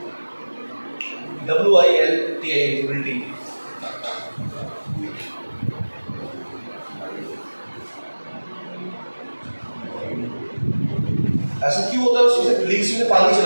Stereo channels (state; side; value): inverted; both; correlation -1.00